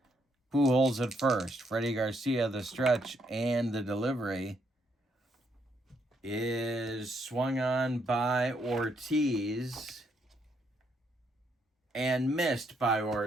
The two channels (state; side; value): normal; both; correlation 0.74